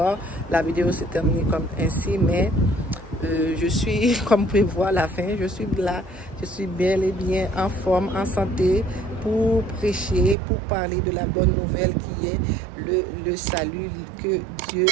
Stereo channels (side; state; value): left; drops out; at 10.4 s